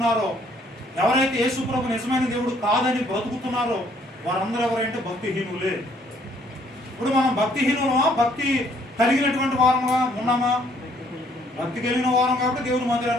ఎవరైతే యేసు ప్రభు నిజమైన దేవుడు కాదని బ్రతుకుతున్నారో వారందరూ ఎవరంటే భక్తిహీనులే. ఇప్పుడు మనం భక్తిహీనులమా, భక్తి కలిగినటువంటి వారముగా ఉన్నామా? భక్తి కలిగిన వారం కాబట్టి దేవుని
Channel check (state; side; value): normal; both; correlation 0.64